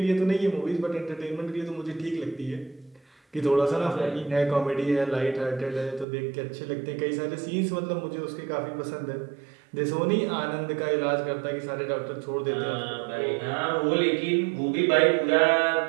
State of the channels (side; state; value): left; drops out; at 6.1 s